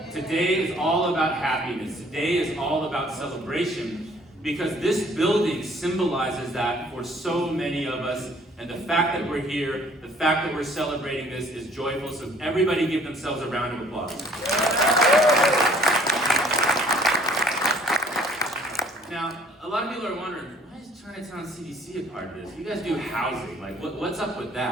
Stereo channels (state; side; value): normal; both; correlation 0.57